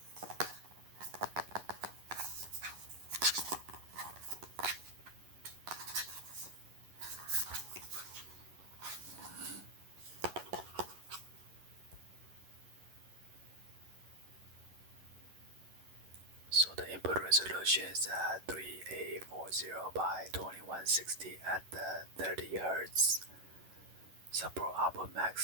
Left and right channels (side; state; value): left; late; 11 ms